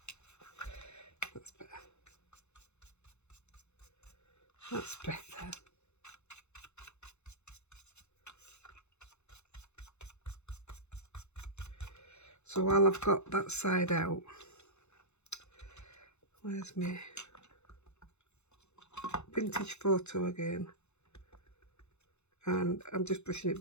That's better. That's better. So while I've got that side out, where's my vintage photo again? And I'm just brushing it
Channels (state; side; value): late; right; 0.82 ms